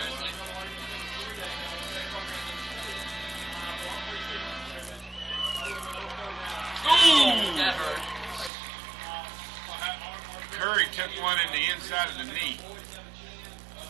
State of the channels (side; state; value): left; drops out; at 8.5 s